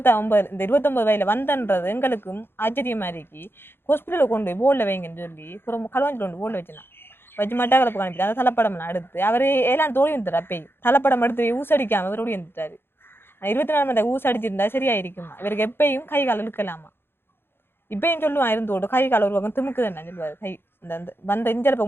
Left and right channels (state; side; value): late; right; 0.11 ms